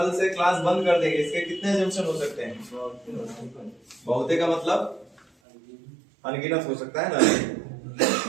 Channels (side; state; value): left; drops out; at 5.2 s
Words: से क्लास बंद कर देंगे, इसके कितने एजम्पशन हो सकते हैं? बहुते का मतलब अनगिनत हो सकता है ना,